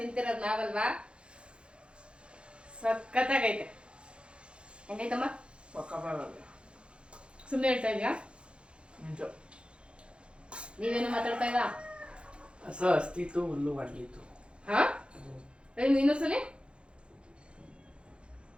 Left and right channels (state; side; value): late; left; 0.057 ms